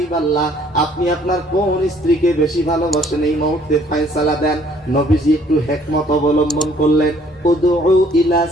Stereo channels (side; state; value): both; normal; correlation 0.60